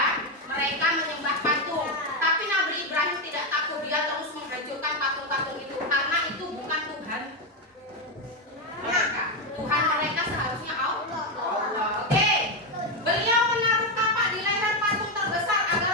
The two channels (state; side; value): normal; both; correlation 0.07